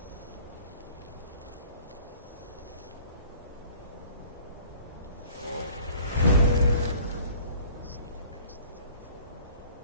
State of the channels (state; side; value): inverted; both; correlation -0.49